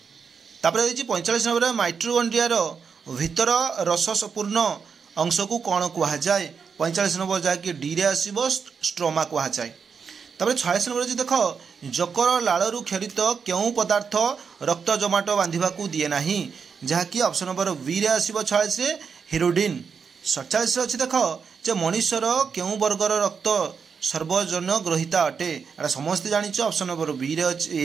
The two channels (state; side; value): quieter; left; 6.0 dB